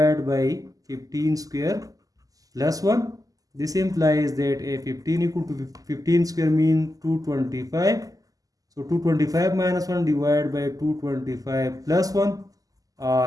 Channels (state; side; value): late; left; 0.17 ms